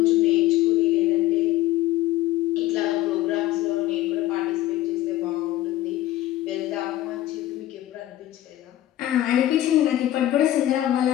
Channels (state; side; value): quieter; right; 14.4 dB